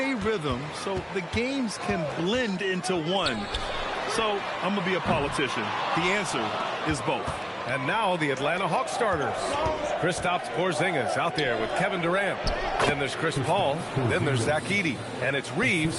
rhythm, so the games can blend into one. So I'm going to be a politician. The answer is both. And now the Atlanta Hawks starters. Kristaps Porzingis out there with Kevin Durant. Then there's Chris Paul. Then there's Zach Edey. And it's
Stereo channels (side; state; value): both; identical; correlation 1.00